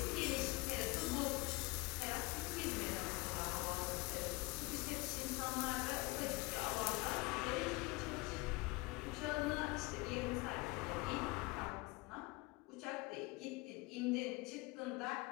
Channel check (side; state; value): right; quieter; 24.1 dB